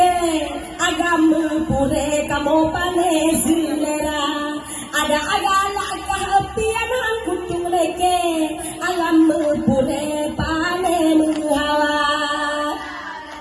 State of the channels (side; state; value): both; identical; correlation 1.00